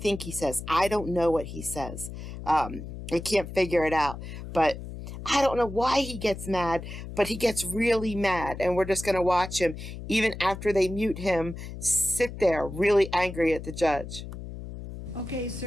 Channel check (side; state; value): left; noise; hum, 10 dB below the sound